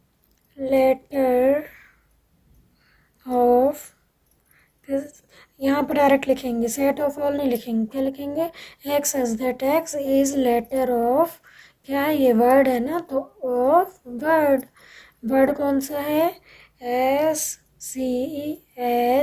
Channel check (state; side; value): identical; both; correlation 1.00